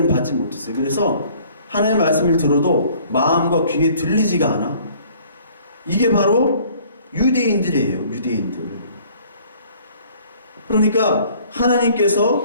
받지 못했어요. 그래서 하나님의 말씀을 들어도 마음과 귀에 들리지가 않아. 이게 바로 유대인들이에요. 유대인들. 그러니까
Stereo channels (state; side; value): inverted; both; correlation -0.55